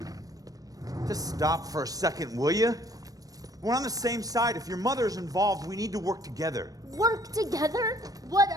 Just stop for a second, will you? We're on the same side. If your mother's involved, we need to work together. Work together? What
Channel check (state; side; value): late; left; 0.18 ms